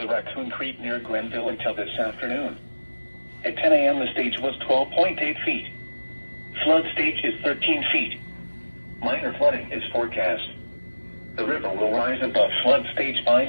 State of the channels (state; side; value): inverted; both; correlation -1.00